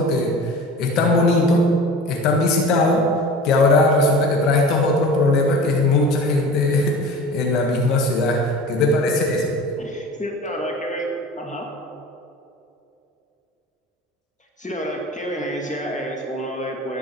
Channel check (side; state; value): both; normal; correlation 0.38